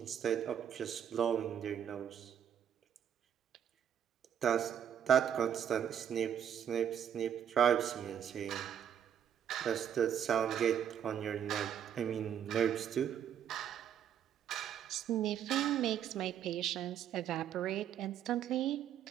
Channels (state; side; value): quieter; left; 9.1 dB